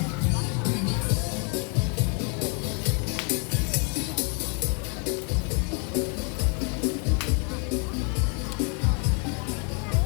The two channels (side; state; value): right; quieter; 37.6 dB